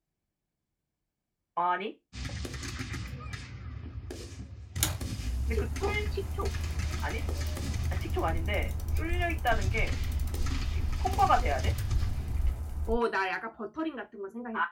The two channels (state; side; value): identical; both; correlation 1.00